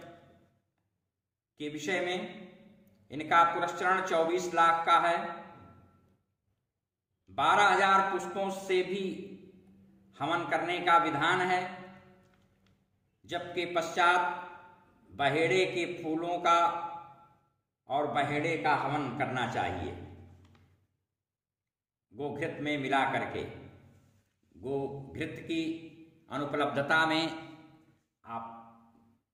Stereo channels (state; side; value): identical; both; correlation 1.00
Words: के विषय में इनका पुरस्चरण 24 लाख का है। 12,000 पुष्पों से भी हवन करने का विधान है, जबकि पश्चात बहेड़े के फूलों का और बहेड़े का हवन करना चाहिए, गोघृत में मिला करके। गोघृत की अनुपलब्धता में आप